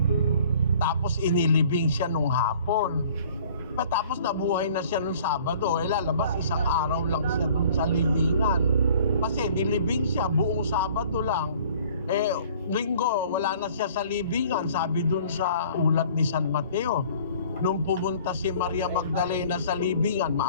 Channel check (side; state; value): both; inverted; correlation -0.52